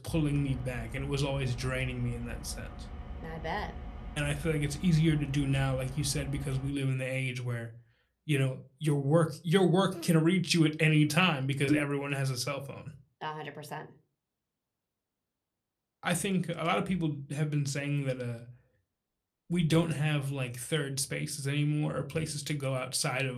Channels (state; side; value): identical; both; correlation 1.00